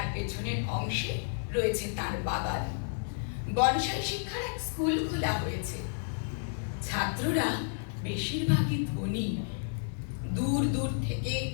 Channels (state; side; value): silent; right; 57 dB below the other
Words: পেছনের অংশে রয়েছে তার বাগান। বনসাই শিক্ষার এক স্কুল খোলা হয়েছে। ছাত্ররা বেশিরভাগই ধনী। দূর দূর থেকে